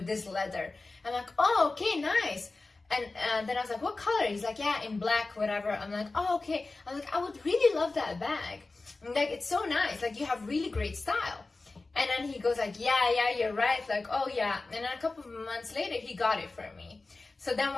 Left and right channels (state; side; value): quieter; right; 3.5 dB